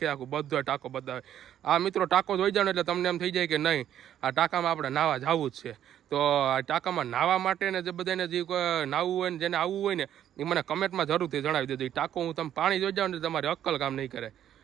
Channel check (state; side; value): quieter; left; 10.7 dB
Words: બધો ટાંકો બતાવે. આ મિત્રો ટાંકો જોઈ જાવ ને એટલે તમને એમ થઈ જાય કે નહીં આ ટાંકામાં આપણે નાહવા જવું જ છે. તો આ ટાંકામાં નાહવા માટે ને જે બધાને જે નાહવું હોય ને જેને આવવું હોય ને એ મને કમેન્ટમાં જરૂરથી જણાવી દેજો. એ ટાંકો હું તમે પાણી જોઈ જાવ ને તમારી અક્કલ કામ નહીં કરે.